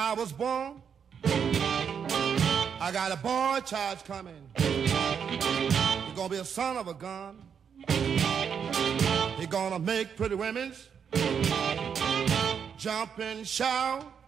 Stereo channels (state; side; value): quieter; left; 7.3 dB